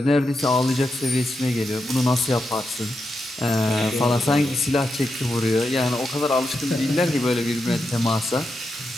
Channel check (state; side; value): normal; both; correlation 0.86